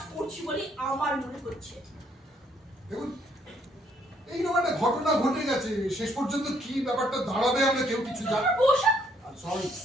করছি বলে আমার মনে হচ্ছে। দেখুন, এইরকম একটা ঘটনা ঘটে গেছে, শেষ পর্যন্ত কি ব্যাপারটা দাঁড়াবে আমরা কেউ কিছু জানি।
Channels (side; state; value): both; normal; correlation 0.68